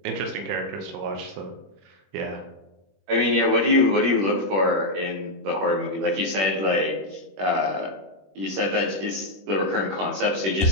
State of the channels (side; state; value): left; late; 21 ms